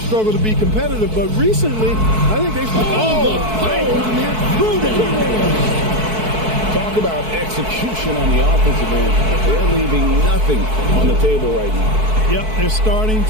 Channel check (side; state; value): left; late; 4.6 ms